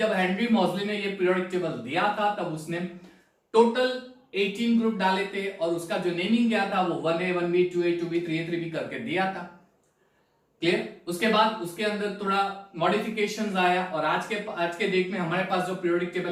हेनरी मॉजले ने ये पीरियोडिक टेबल दिया था तब उसने टोटल 18 ग्रुप डाले थे और उसका जो नेमिंग किया था वो 1A 1B 2A 2B 3A 3B करके दिया था। क्लियर? उसके बाद उसके अंदर थोड़ा मॉडिफिकेशंस आया और आज के डेट में हमारे पास जो पीरियोडिक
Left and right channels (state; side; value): identical; both; correlation 1.00